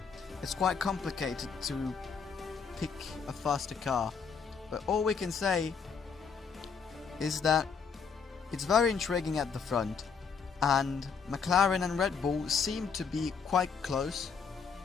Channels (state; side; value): quieter; right; 5.9 dB